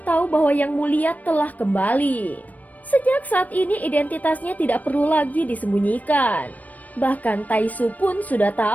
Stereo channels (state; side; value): late; right; 0.075 ms